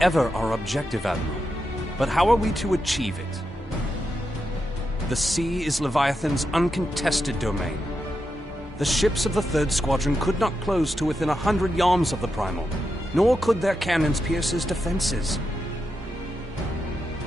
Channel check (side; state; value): both; normal; correlation 0.86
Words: ever our objective, Admiral. But how are we to achieve it? The sea is Leviathan's uncontested domain. The ships of the 3rd Squadron could not close to within 100 yards of the Primal, nor could their cannons pierce his defenses.